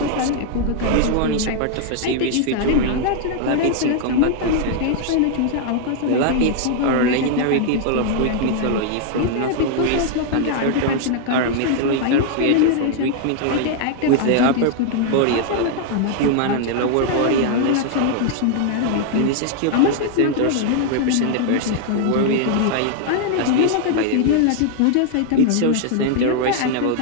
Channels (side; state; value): both; different; correlation 0.00